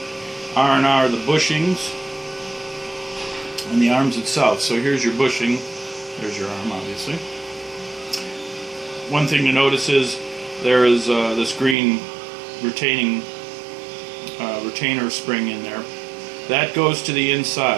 R&R the bushings and the arms itself. So here's your bushing. There's your arm, obviously. One thing to notice is there is this green retainer spring in there. That goes to the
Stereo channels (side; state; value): left; drops out; at 11.8 s